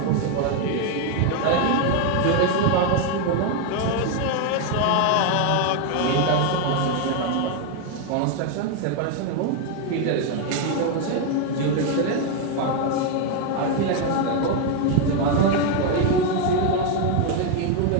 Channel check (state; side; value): different; both; correlation 0.01